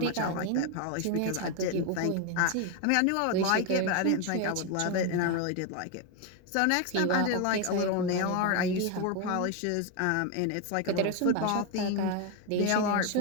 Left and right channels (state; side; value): different; both; correlation 0.02